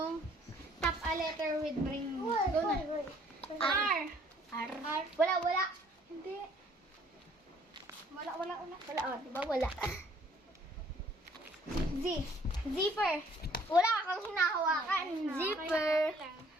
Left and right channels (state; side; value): normal; both; correlation 0.60